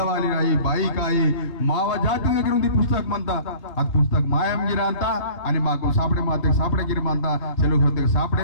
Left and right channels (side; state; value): right; late; 3.3 ms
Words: వాలి రాయి బాయి కాయి మావ జాతి దగ్గర ఉంది పుస్తకం అంతా అది పుస్తక మాయం గిరా అంతా అని మాకు సాపడే మాతే సాపడే గిరి అంతా సెలవు ಹೊತ್ತಿಗೆ